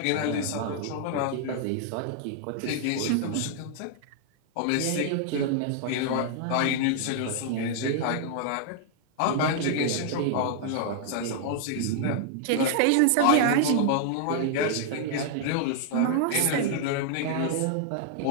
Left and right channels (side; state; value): both; different; correlation 0.00